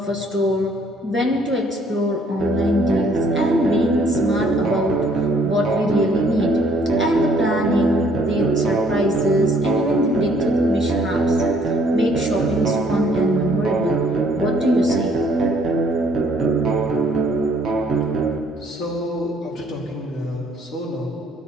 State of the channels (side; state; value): both; normal; correlation 0.62